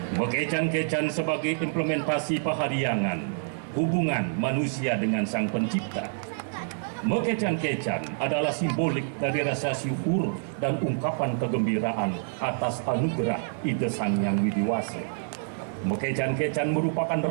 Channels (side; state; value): left; silent; 60 dB below the other